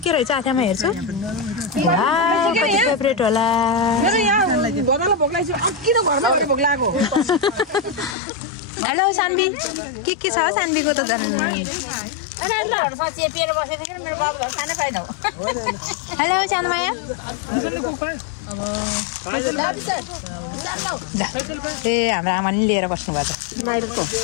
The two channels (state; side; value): drops out; right; at 8.2 s